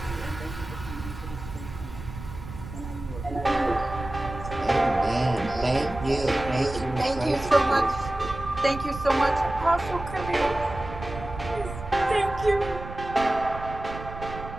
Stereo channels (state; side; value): noise; right; rumble, 11 dB below the sound